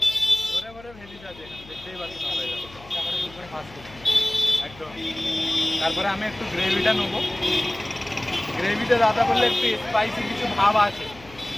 ভরে ভরে ভেজিস আছে এখানে, দেখতেই পাচ্ছ সবাই একদম। তারপরে আমি একটু গ্রেভিটা নেবো। গ্রেভিটা দাদা বললে একটু স্পাইসি কিছু ভাব আছে,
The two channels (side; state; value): left; noise; hum, 21 dB below the sound